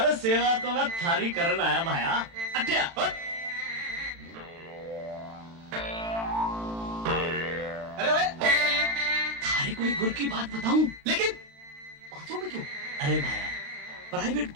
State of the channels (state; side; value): late; left; 36 ms